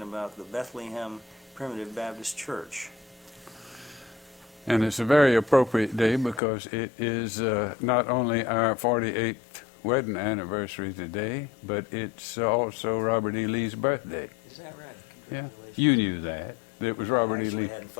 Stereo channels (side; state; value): right; drops out; at 6.4 s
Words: about the Bethlehem Primitive Baptist Church. And it's a very appropriate day because it is not only our 48th wedding anniversary today, but it's also Robert E. Lee's birthday. Is that right? Yeah, you knew that. It was Robert E. Lee. I hadn't